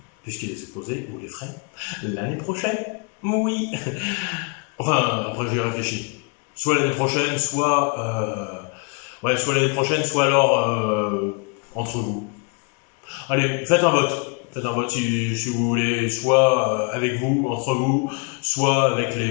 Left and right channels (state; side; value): quieter; right; 34.0 dB